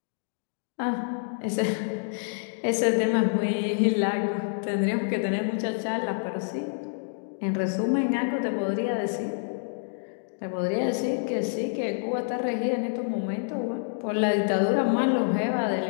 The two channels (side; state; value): right; silent; digital silence